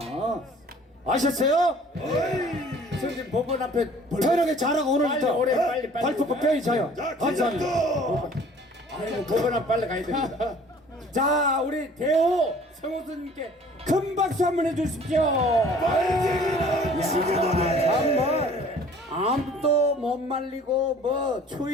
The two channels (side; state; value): both; normal; correlation 0.51